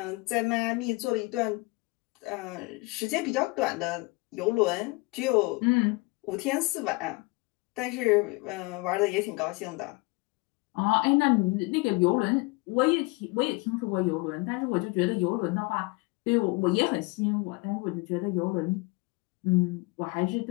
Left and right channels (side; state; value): right; quieter; 25.6 dB